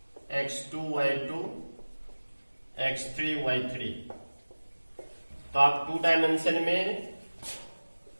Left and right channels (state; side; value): inverted; both; correlation -1.00